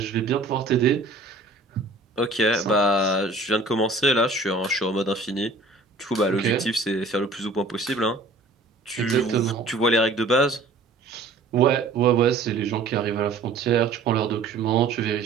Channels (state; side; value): quieter; left; 3.4 dB